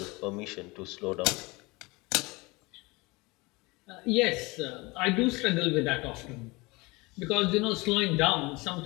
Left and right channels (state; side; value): quieter; right; 24.3 dB